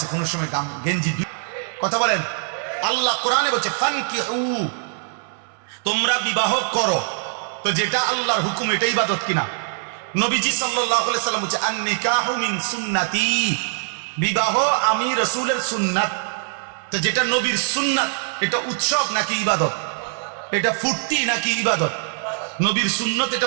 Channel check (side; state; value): left; silent; digital silence